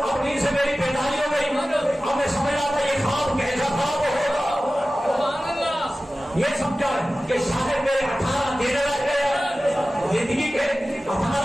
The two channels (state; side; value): normal; both; correlation 0.96